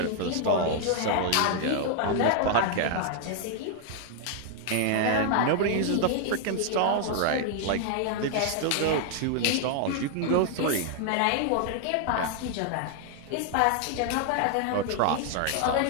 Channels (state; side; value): different; both; correlation 0.00